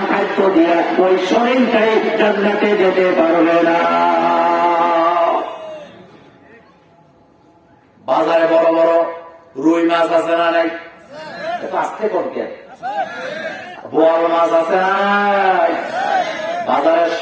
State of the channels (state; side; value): identical; both; correlation 1.00